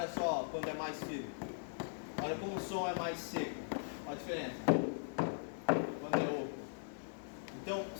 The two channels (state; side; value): silent; right; 51 dB below the other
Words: só quando é mais firme. Olha como o som é mais seco. Olha a diferença. Quando é oco. Então,